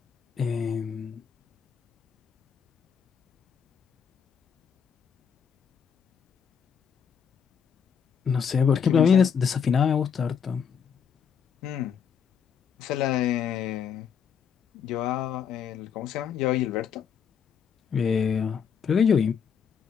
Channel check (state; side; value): quieter; right; 7.2 dB